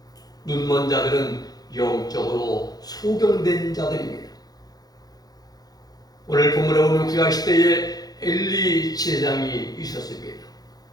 눈먼 자들은 영적으로 소경된 자들입니다. 오늘 본문에 보면 구약시대에 엘리 제사장이 있었습니다.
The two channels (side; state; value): right; late; 0.19 ms